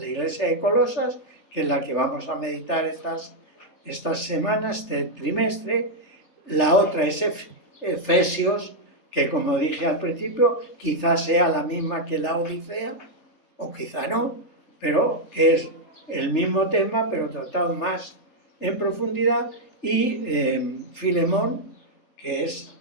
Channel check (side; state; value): right; late; 3.4 ms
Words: iglesia de Colosas, que es la que vamos a meditar estas semanas, este trimestre. La otra es Efesios, que como dije al principio, quizás sea la misma que la Odisea, o quizá no, pero que es el mismo tema, pero tratado más en profundidad. Y Filemón, que es